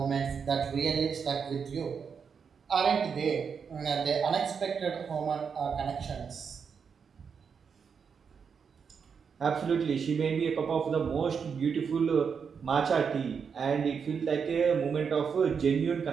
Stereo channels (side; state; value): left; quieter; 6.3 dB